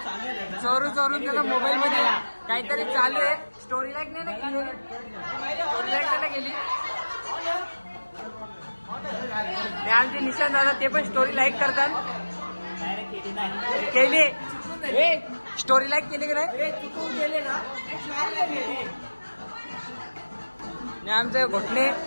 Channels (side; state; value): both; inverted; correlation -1.00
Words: त्याला मोबाईल मध्ये काहीतरी चालू आहे. स्टोरी लाईक नाही ना स्टोरी लाईक त्याला गेली. आमचे निशांत दादा ते पण स्टोरी लाईक करतात. केली स्टोरी लाईक केली की नाही? आमचे घोटणे